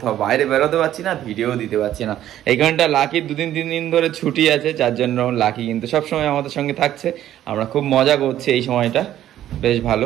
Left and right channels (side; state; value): left; quieter; 12.2 dB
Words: বাইরে বেরোতে পারছি না, ভিডিও দিতে পারছি না। এইখানটা লাকি 2-3 দিন ধরে ছুটি আছে, যার জন্য লাকি কিন্তু সবসময় আমাদের সঙ্গে থাকছে। আমরা খুব মজা করছি এই সময়টা, বেশ